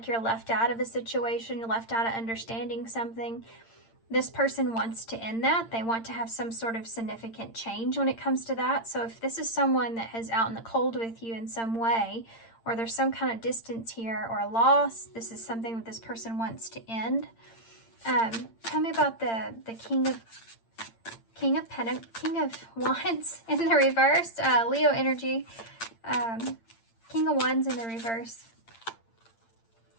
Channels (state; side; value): late; right; 8.8 ms